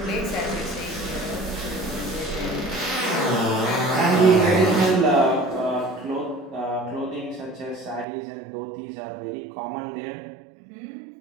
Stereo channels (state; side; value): drops out; left; at 8.1 s